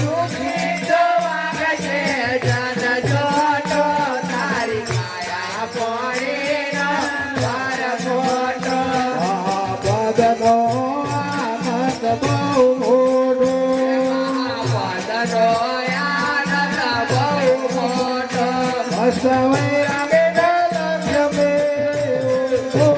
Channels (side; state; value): both; identical; correlation 1.00